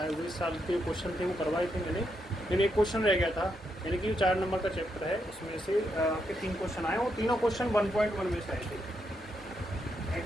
हुए इस साल के क्वेश्चन थे वो करवाए थे मैंने, लेकिन एक क्वेश्चन रह गया था, यानी कि 4 नंबर का चैप्टर है, उसमें से आपके 3 क्वेश्चन आए और तीनों क्वेश्चन 1.1 में से आए थे।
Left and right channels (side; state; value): both; normal; correlation 0.81